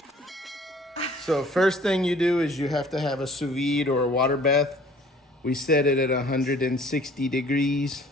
So first thing you do is you have to have a sous vide or a water bath. We set it at 160 degrees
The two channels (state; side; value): normal; both; correlation 0.53